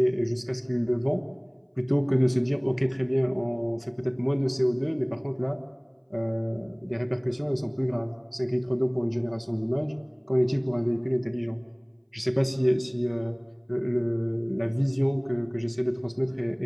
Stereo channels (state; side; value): identical; both; correlation 1.00